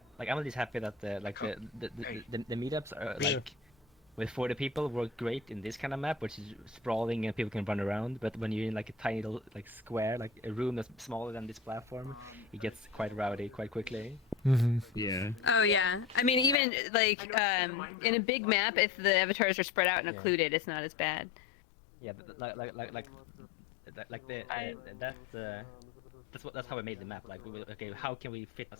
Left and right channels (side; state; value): right; drops out; at 16.6 s